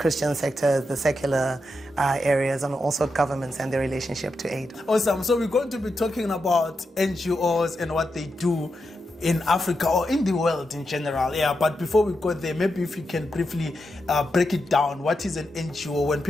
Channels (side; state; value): both; normal; correlation 0.86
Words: sector, the secular areas, and also governments and their relationship to aid. Awesome. So we're going to be talking about NGOs and what they do in Africa or in the world in general. Yeah, but before we go there, maybe if you can briefly break it down. What is an NGO? When